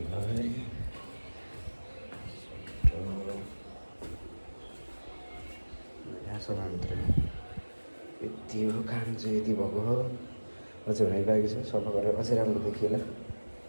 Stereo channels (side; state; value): both; inverted; correlation -1.00